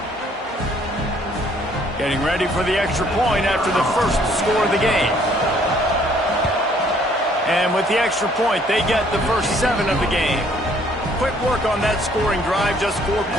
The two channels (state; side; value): normal; both; correlation 0.62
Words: Getting ready for the extra point after the 1st score of the game. And with the extra point, they get the first 7 of the game. Quick work on that scoring drive, just 4